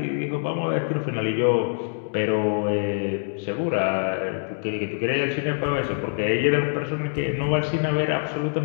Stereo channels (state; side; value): silent; right; digital silence